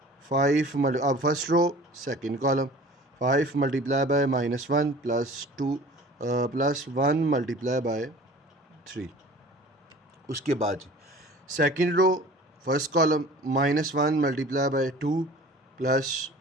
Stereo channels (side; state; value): both; normal; correlation 0.44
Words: 5 अब first row second column 5 multiply by -1 plus 2 plus 1 multiply by 3। उसके बाद second row first column -1 multiply by 2 plus